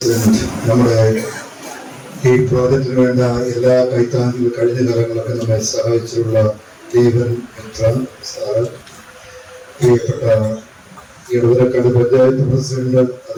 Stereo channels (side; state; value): both; identical; correlation 1.00